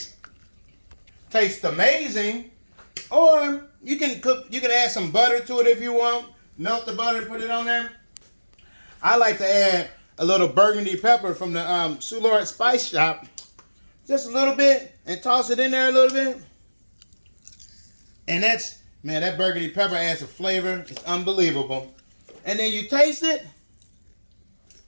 amazing. Or you can add some butter to it if you want. Melt the butter and put it on there. I like to add a little burgundy pepper from the Soulard Spice Shop. Just a little bit. And toss it in there a little bit. And that burgundy pepper adds a flavor. It's unbelievable. And then you taste it.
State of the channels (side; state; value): both; inverted; correlation -1.00